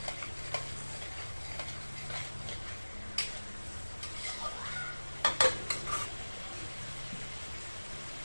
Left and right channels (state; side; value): inverted; both; correlation -1.00